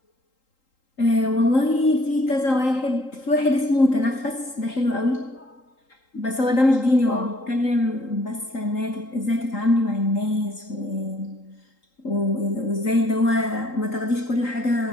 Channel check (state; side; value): late; right; 3.8 ms